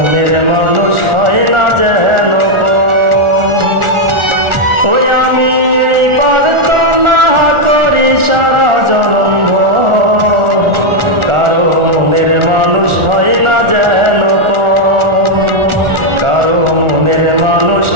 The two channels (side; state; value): left; late; 1.4 ms